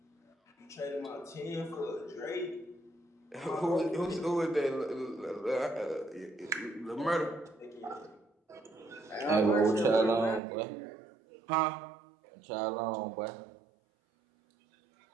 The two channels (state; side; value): drops out; left; at 10.4 s